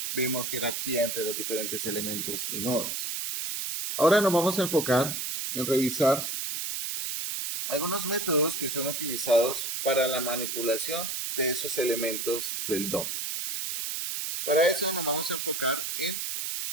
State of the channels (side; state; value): right; noise; hiss, 3 dB below the sound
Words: vimos jerarquía entre los diferentes elementos y nodos. Ahora nos vamos a enfocar en revisar algunos métodos que son utilizados para la manipulación de esos elementos del DOM. Para eso nos vamos a enfocar en